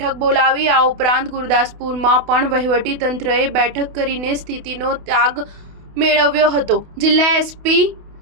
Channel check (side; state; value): left; late; 28 ms